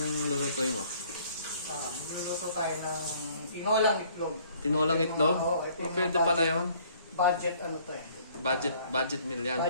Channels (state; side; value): inverted; both; correlation -0.59